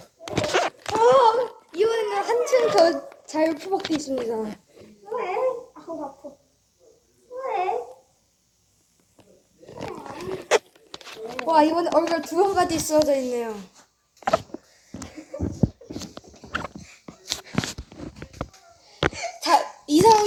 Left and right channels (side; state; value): both; identical; correlation 1.00